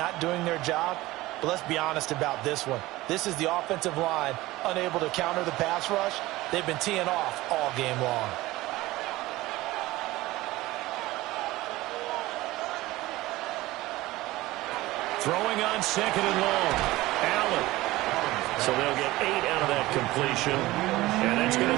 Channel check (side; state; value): left; quieter; 18.4 dB